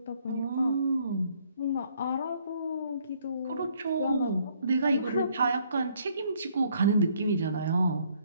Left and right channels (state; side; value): inverted; both; correlation -0.65